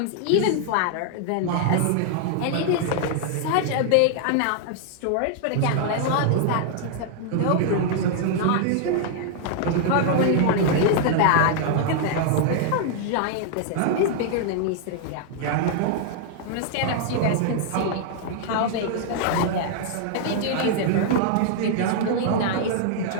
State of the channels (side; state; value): both; different; correlation -0.01